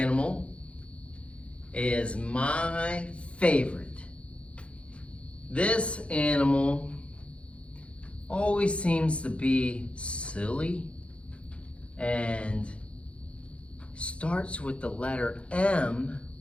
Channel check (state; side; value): late; right; 0.060 ms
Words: is my favorite. This animal always seems to be silly and starts with the letter M,